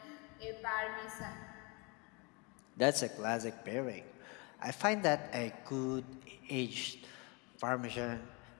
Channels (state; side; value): quieter; right; 30.0 dB